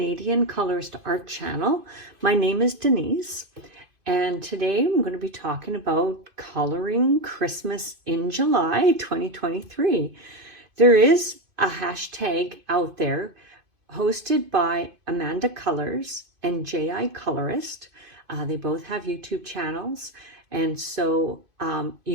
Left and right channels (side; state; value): left; late; 2.6 ms